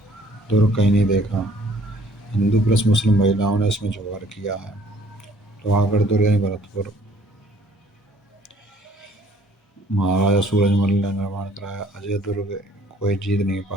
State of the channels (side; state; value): both; normal; correlation 0.58